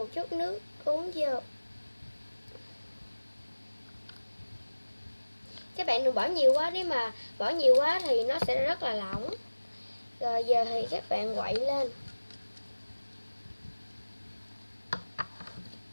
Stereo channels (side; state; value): both; inverted; correlation -1.00